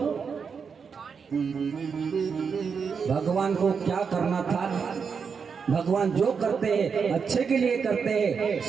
भगवान को क्या करना था, भगवान जो करते हैं अच्छे के लिए करते हैं।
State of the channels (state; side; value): quieter; left; 6.0 dB